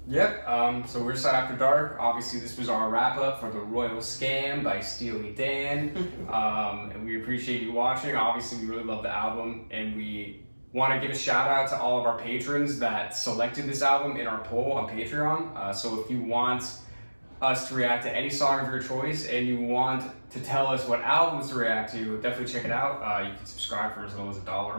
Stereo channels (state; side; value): inverted; both; correlation -1.00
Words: Yep, so we're S.A.D After Dark. Obviously, this was our wrap-up for The Royal Scam by Steely Dan. And we appreciate you watching. Obviously, we really love the album, and we want to give a shout-out to all of our patrons that selected this album in our poll on Patreon. So if you want us to react to any song of your choice, and you want to tell us what albums to react to, definitely check it out. You can subscribe for as little as $1 a